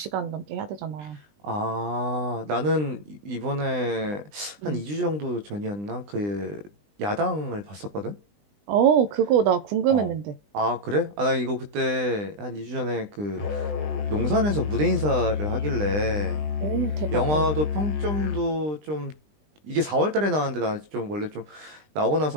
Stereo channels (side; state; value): left; late; 20 ms